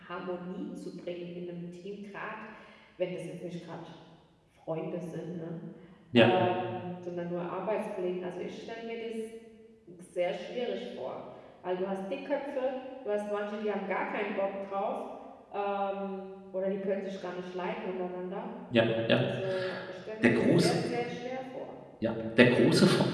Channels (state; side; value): identical; both; correlation 1.00